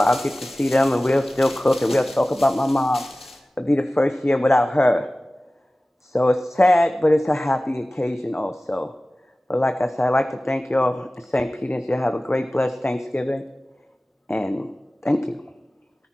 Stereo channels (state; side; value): normal; both; correlation 0.97